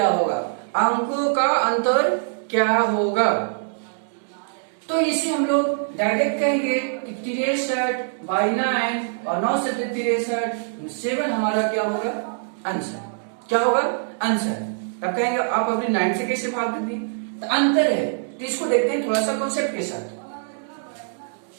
होगा? अंकों का अंतर क्या होगा? तो इसे हम लोग डायरेक्ट कहेंगे कि 63/9 और 9 से 63 7 हमारा क्या होगा? आंसर। क्या होगा? आंसर। तब कहेंगे आप अपनी 9 से कैसे भाग देंगे? तो अंतर है, तो इसको देखते हैं थोड़ा सा कॉन्सेप्ट के साथ।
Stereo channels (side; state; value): left; silent; digital silence